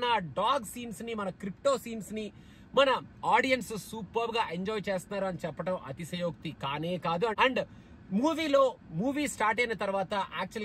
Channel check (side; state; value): both; identical; correlation 1.00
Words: ఆ డాగ్ సీన్స్ ని, మన క్రిప్టో సీన్స్ ని మన ఆడియన్స్ సూపర్ గా ఎంజాయ్ చేస్తున్నారు అని చెప్పడం అతిశయోక్తి కానే కాదు. అండ్ మూవీ స్టార్ట్ అయిన తర్వాత